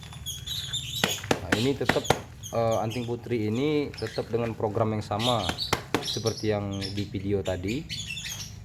Ini tetap anting putri ini tetap dengan program yang sama seperti yang di video tadi,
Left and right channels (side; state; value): both; identical; correlation 1.00